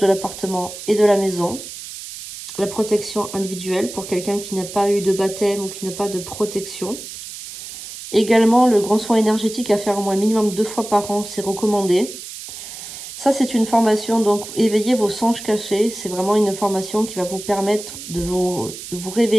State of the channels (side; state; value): right; noise; hiss, 11 dB below the sound